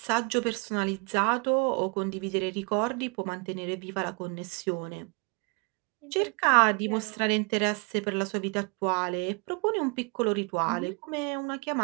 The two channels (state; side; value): quieter; left; 32.8 dB